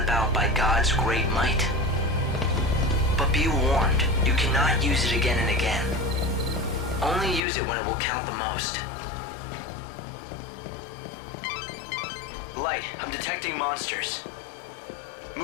by God's great might. But be warned, you cannot use it again and again. Only use it when it will count the most. Light, I'm detecting monsters.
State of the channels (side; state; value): right; drops out; at 7.4 s